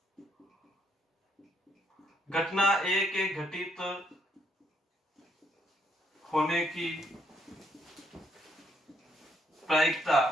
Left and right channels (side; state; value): both; normal; correlation 0.71